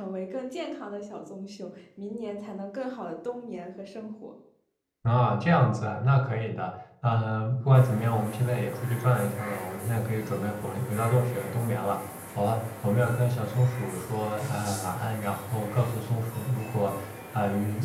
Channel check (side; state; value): both; identical; correlation 1.00